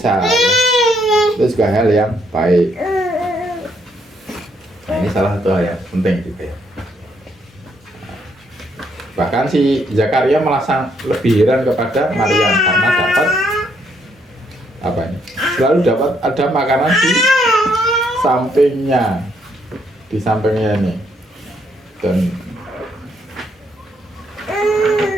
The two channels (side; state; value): both; normal; correlation 0.72